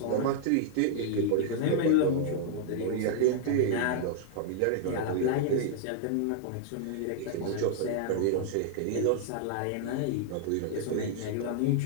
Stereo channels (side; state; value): both; different; correlation -0.01